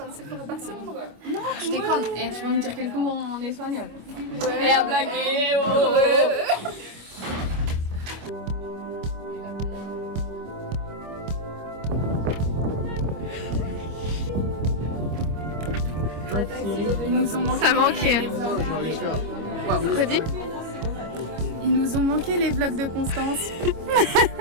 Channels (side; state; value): left; late; 25 ms